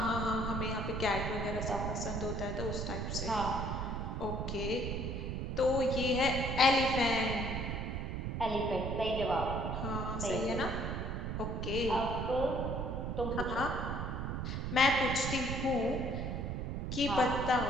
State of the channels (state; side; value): noise; right; rumble, 3 dB below the sound